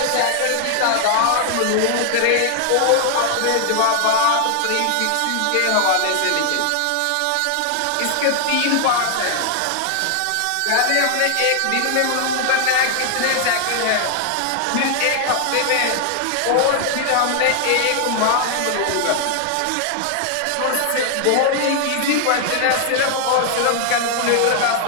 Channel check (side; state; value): both; different; correlation 0.00